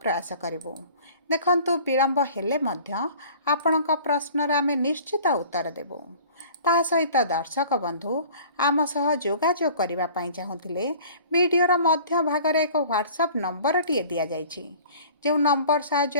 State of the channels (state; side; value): inverted; both; correlation -0.47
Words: प्रयास करिवु। देखंतु विलंब हेले मध्य आपणक प्रश्नर आमे निश्चित उत्तर देबु। ता सहित दर्शक बंधु आम सह जोगाजोग करबा पई चाहुथिले वीडियोर मध्य भागरे एक व्हाट्सएप नंबर टिए दिया जाइछि जो नंबर